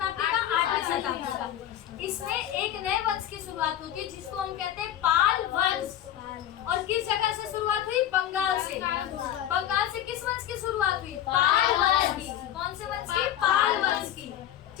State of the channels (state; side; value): quieter; right; 11.4 dB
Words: का? 8वीं शताब्दी का। इसमें एक नए वंश की शुरुआत होती है जिसको हम कहते हैं पाल वंश। और किस जगह से शुरुआत हुई? बंगाल से। बंगाल से किस वंश की शुरुआत हुई? पाल वंश की। कौन से वंश की? पाल वंश की।